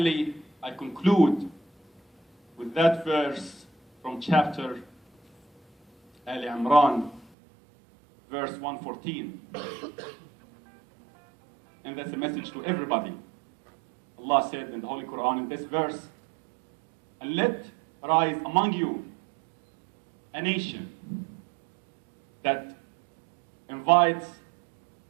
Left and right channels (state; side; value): drops out; left; at 7.2 s